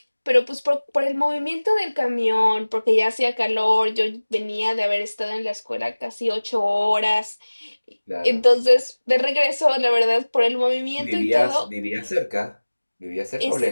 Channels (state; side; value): inverted; both; correlation -1.00